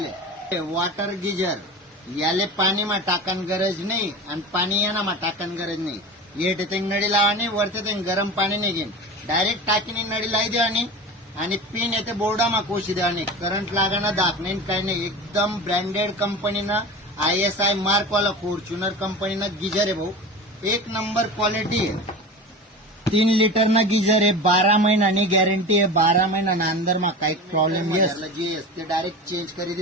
वॉटर गीजर. याले पाणी मा टाकन गरज नाही आणि पाणी याना मा टाकन गरज नाही. येते ते नळी लावानी वरते ते गरम पाणी नाही घेईन डायरेक्ट टाकीने नळी लाई देवानी आणि पिन येते बोर्डा मा कोशी देवानी. करंट लागाना दाख नाही काही नाही. एकदम ब्रँडेड कंपनीनं ISI मार्क वाला फॉर्च्युनर कंपनीनं गीजर आहे भाऊ. एक नंबर क्वालिटी आहे. 3 लिटर ना गीजर आहे. 12 महिन्यानी गॅरंटी आहे. 12 महिन्याना अंदर मा काही प्रॉब्लेम जे असते डायरेक्ट चेंज करी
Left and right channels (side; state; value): both; normal; correlation 0.31